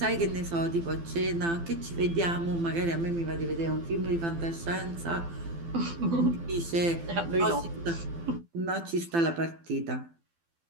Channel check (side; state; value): left; late; 12 ms